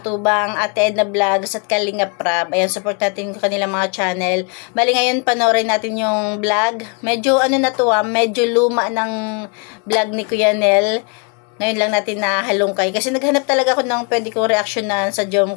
Ate Edna Vlogs at Kalingap Prab. Ayan, support natin kanilang mga channel. Bali ngayon, panoorin natin yung vlog. Medyo ano na to medyo luma ng vlog ni Kuya Nel. Ngayon lang natin nahalungkay. Kasi naghanap talaga ako ng pwede kong reaksyonan sa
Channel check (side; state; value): right; quieter; 35.7 dB